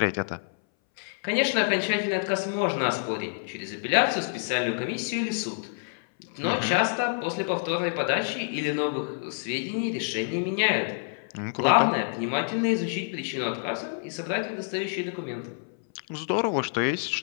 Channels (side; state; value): right; silent; 59 dB below the other